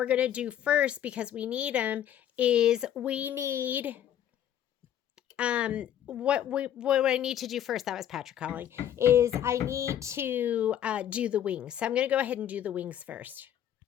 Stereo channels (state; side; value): quieter; right; 10.5 dB